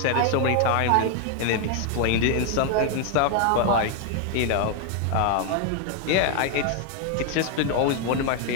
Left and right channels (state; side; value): different; both; correlation 0.00